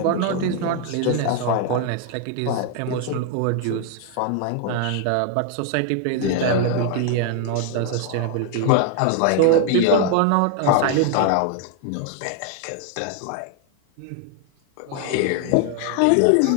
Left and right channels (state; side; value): different; both; correlation 0.00